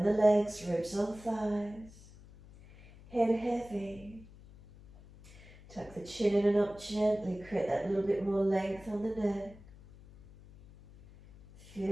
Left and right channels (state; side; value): noise; left; hum, 21 dB below the sound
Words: the legs, ribs on thighs. Head heavy. Tuck the chin in and up gently, create that little bit more length on the neck.